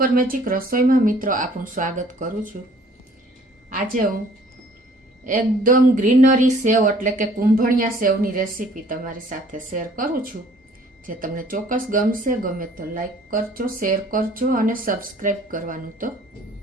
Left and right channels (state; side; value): normal; both; correlation 0.56